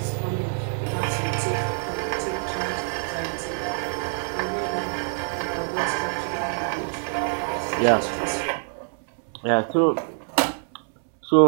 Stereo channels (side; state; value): left; silent; 60 dB below the other